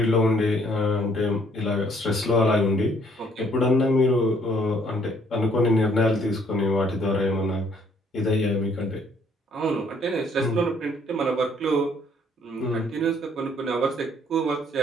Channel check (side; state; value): both; normal; correlation 0.64